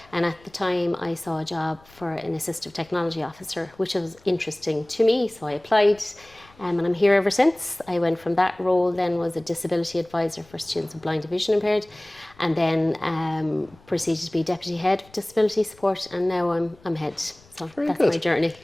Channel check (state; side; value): noise; left; rumble, 27 dB below the sound